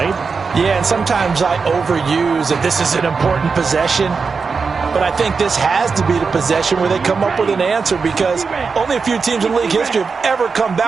Yeah, and sometimes I overuse that this is an important possession. but I think this has to be the possession where they come up with an answer, because only a few teams in league history have ever come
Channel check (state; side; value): quieter; left; 5.0 dB